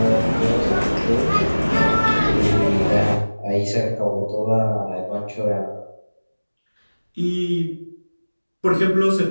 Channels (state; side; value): inverted; both; correlation -1.00